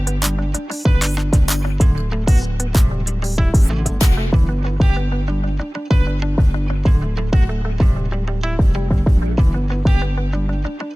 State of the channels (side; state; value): both; normal; correlation 0.98